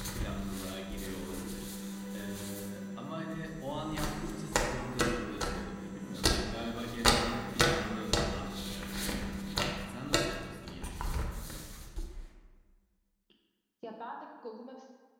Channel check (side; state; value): both; identical; correlation 1.00